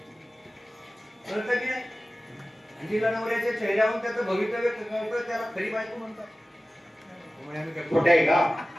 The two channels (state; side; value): normal; both; correlation 0.96